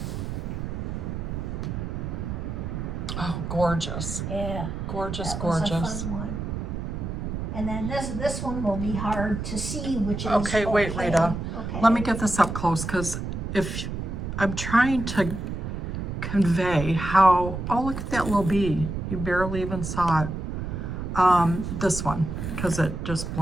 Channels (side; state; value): right; noise; rumble, 4 dB below the sound